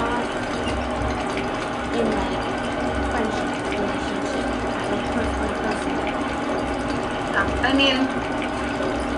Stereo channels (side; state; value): both; identical; correlation 1.00